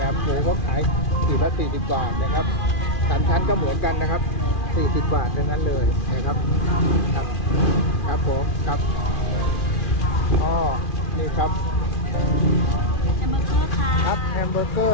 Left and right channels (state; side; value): late; right; 2.4 ms